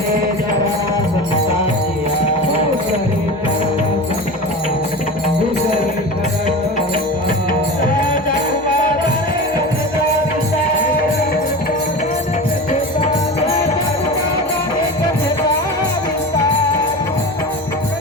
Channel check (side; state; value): both; normal; correlation 0.29